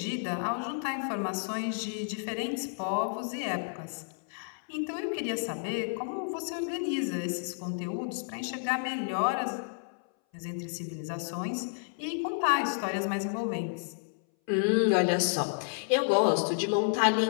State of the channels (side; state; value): right; silent; 57 dB below the other